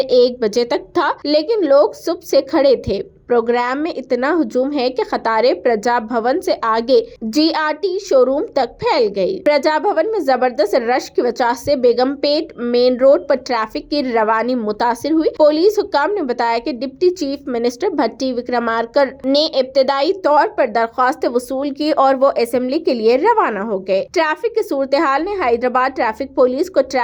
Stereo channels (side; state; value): both; identical; correlation 1.00